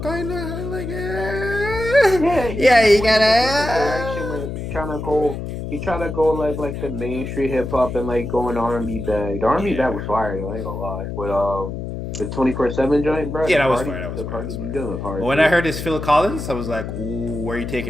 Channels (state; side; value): noise; left; hum, 6 dB below the sound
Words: kind of like, yeah, you gotta. He tried to go like the Main Street hip hop and like go in R&B bag. The R&B bag was fire though. I ain't gonna lie. With the 24/7 joint, bro. Yeah, that was fire. But when I heard this Phil Collins, I was like, ooh, where are you